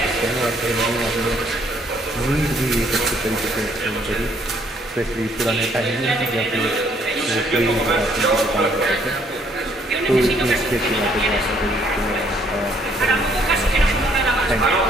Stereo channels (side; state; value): both; normal; correlation 0.66